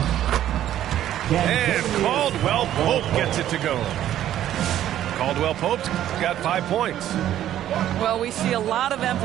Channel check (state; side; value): quieter; left; 11.9 dB